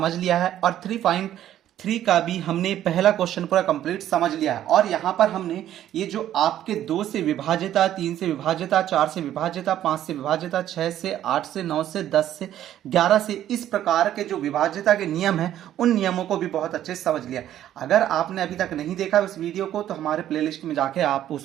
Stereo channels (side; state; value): left; quieter; 11.8 dB